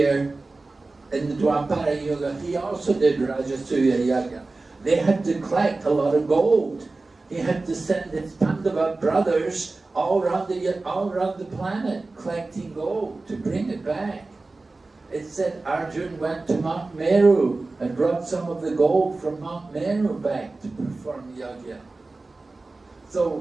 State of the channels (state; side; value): quieter; left; 3.4 dB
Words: in the Dwapara Yuga, he also did Rajasuya Yagya. They had to collect a lot of gold. He had to send his Pandava brothers all around the planet collecting gold to bring it back. It said Arjun went to Mount Meru and brought some of the gold from Mount Meru back to perform yagya.